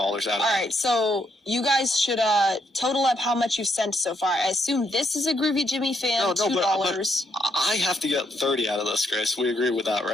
of it. All right, so you guys should total up how much you've sent so far. I assume this is a Groovy Jimmy fan, $2. But I have to get 30 out of this, Grace. We agree with that,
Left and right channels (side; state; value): both; normal; correlation 0.75